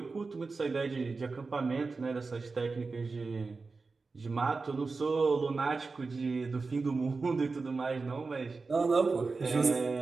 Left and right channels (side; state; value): left; quieter; 4.1 dB